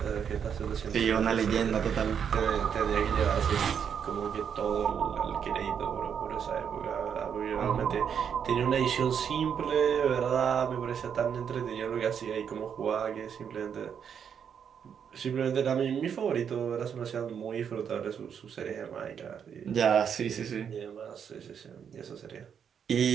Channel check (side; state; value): left; quieter; 7.7 dB